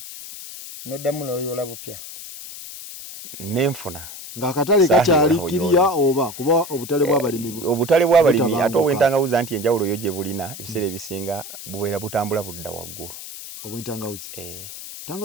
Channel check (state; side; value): noise; left; hiss, 12 dB below the sound